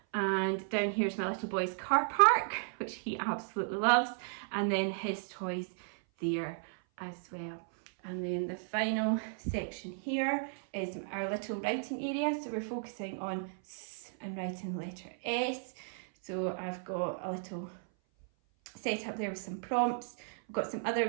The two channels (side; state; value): left; silent; 55 dB below the other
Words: And down here is my little boy's car park, which he absolutely loves, and then his toys there as well. And then the final section here is our little writing area. So we're focusing on S and writing the letter S. So I've got a little set up there with some prompts. We've got some other